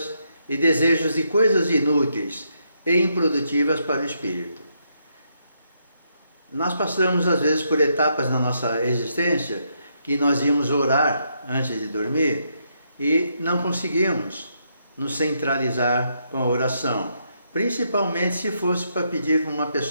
e desejos de coisas inúteis e improdutivas para o espírito. Nós passamos às vezes por etapas na nossa existência que nós íamos orar antes de dormir e não conseguimos nos centralizar com a oração. principalmente se fosse para pedir para uma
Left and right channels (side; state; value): both; inverted; correlation -0.78